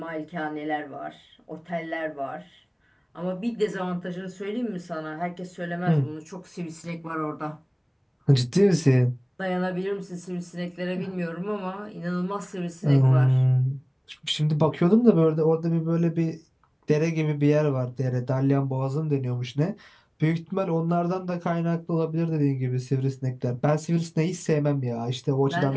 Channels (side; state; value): both; identical; correlation 1.00